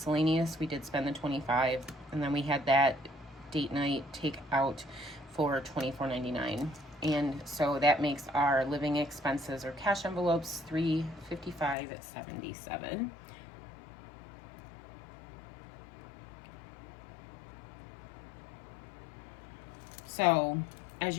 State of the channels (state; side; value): drops out; right; at 11.8 s